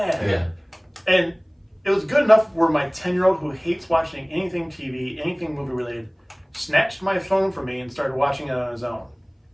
And it was good enough where my 10-year-old who hates watching anything TV, anything movie related, snatched my phone from me and started watching it on his own,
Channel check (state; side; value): identical; both; correlation 1.00